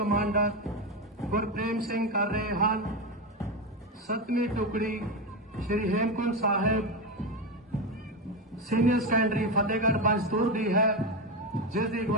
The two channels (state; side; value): normal; both; correlation 0.14